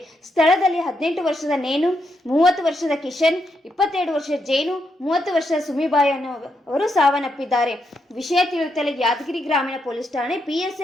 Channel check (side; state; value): both; normal; correlation 0.81